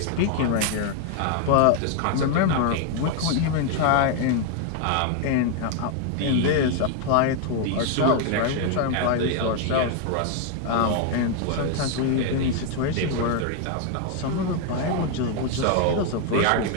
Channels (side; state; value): both; different; correlation 0.00